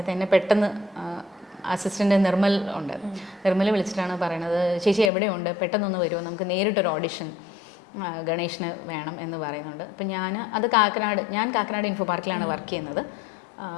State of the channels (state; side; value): drops out; right; at 5.1 s